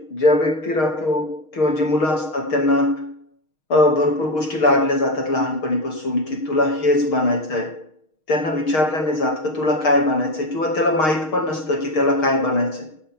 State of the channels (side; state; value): right; late; 6.4 ms